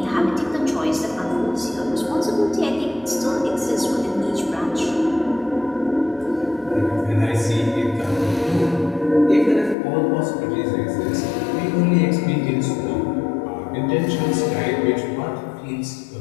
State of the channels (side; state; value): right; drops out; at 9.8 s